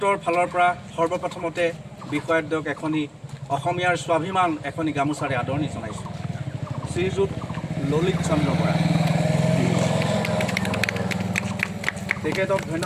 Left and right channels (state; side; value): identical; both; correlation 1.00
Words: ফালৰ পৰা সৰ্বপ্ৰথমতে বিষয়াদ্বয়ক এখনি অসমীয়াৰ স্বাভিমান এখনি গামোচাৰে আদৰণি জনাইছোঁ। শ্ৰীযুত ললিত চন্দ্ৰ বৰা, তেখেতক